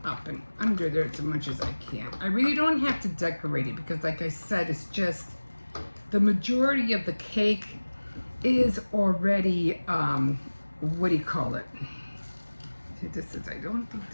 up and under there as much as I can. I really don't have to decorate it because, like I said, it's just the majority of the cake is already, what do you call it? See, I don't think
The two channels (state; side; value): inverted; both; correlation -1.00